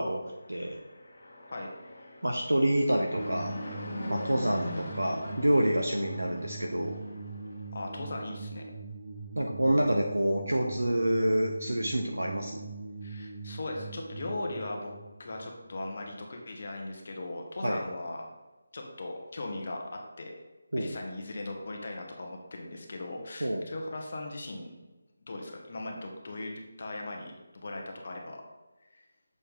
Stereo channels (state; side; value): inverted; both; correlation -0.94